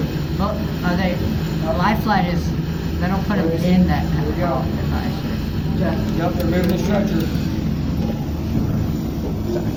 Well, are they? A life flight is. They don't put them in that. Here we go. Device. Yep, they're moving the stretcher.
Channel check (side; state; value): both; identical; correlation 1.00